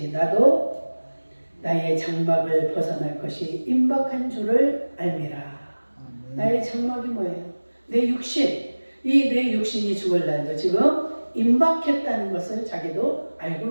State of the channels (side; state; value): both; inverted; correlation -1.00